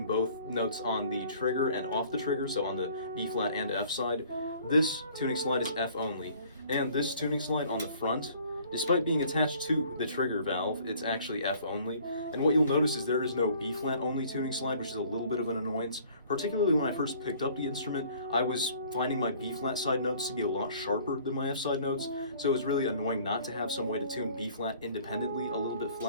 both notes on the trigger and off the trigger, so on the B flat and F side. This tuning slide is F only, and this tuning slide on the front, despite being attached to the trigger valve, it's actually F only. And what you'll notice is there is no B flat only tuning slide, which is a little bit of an annoyance. Particularly when I first picked up the instrument, I was finding my B flat side notes to be a lot sharper than my F side notes, so it was really annoying not to have some way to tune B flat independently a little bit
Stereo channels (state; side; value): inverted; both; correlation -0.54